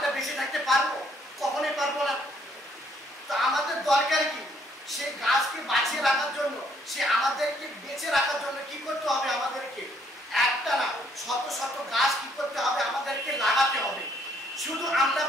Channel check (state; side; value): normal; both; correlation 0.67